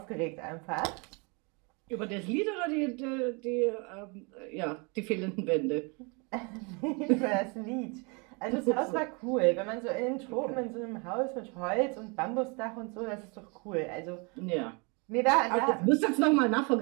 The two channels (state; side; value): quieter; left; 31.6 dB